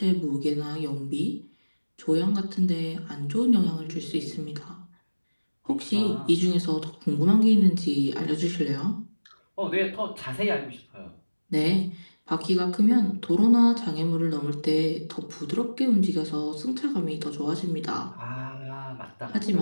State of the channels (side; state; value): both; inverted; correlation -1.00